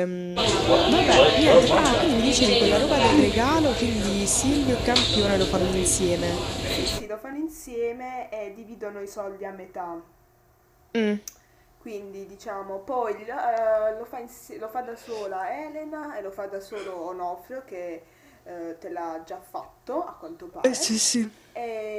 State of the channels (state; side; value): identical; both; correlation 1.00